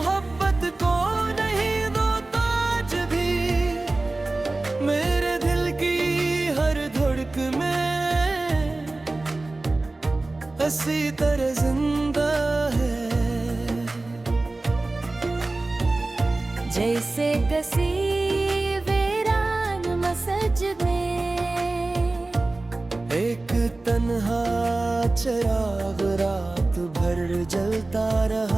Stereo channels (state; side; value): quieter; left; 3.1 dB